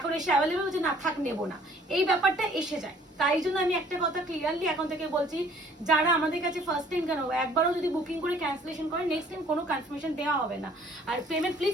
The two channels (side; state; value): both; normal; correlation 0.57